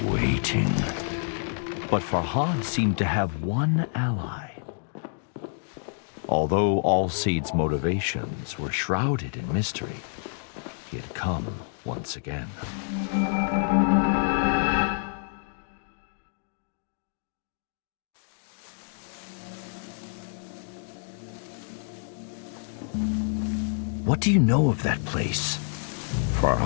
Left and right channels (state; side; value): silent; right; digital silence